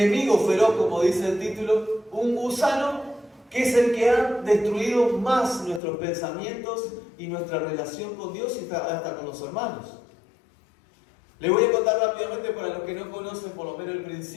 feroz, como dice el título, un gusano, que es el que ha destruido más nuestros pensamientos y nuestra relación con Dios y hasta con los hermanos. Les voy a contar rápidamente para los que no conocen por lo menos el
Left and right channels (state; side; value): drops out; right; at 5.8 s